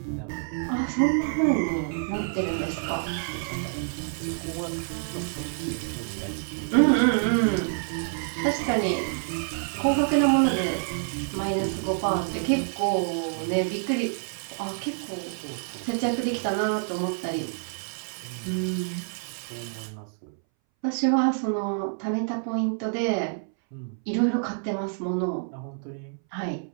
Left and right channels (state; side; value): silent; left; 60 dB below the other